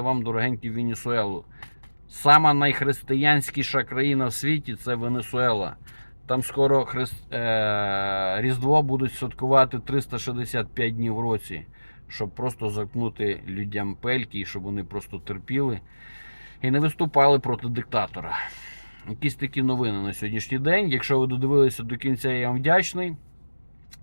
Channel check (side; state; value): both; inverted; correlation -1.00